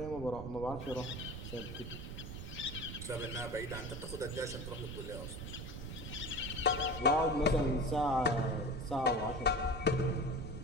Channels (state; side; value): noise; right; rumble, 8 dB below the sound